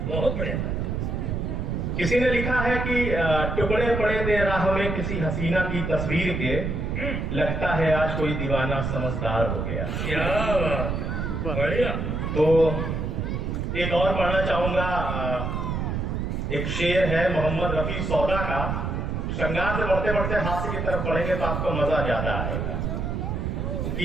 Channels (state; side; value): noise; right; rumble, 2 dB below the sound